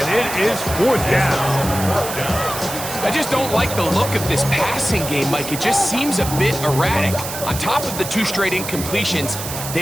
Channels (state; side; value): noise; right; hiss, 8 dB below the sound